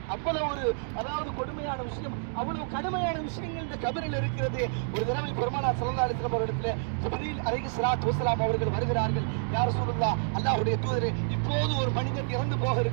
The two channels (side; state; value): left; silent; digital silence